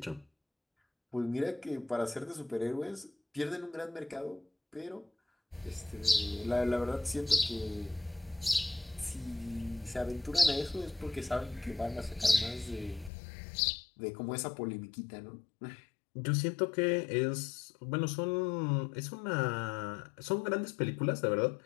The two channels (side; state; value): right; drops out; at 13.1 s